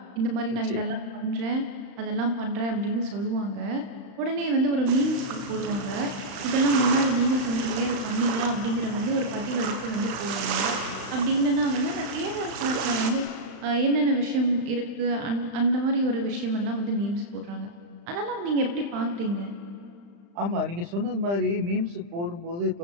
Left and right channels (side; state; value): left; late; 35 ms